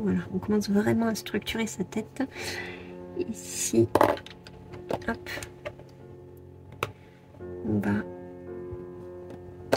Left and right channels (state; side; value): identical; both; correlation 1.00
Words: on commence vraiment à structurer sa tête. Ici, hop, on va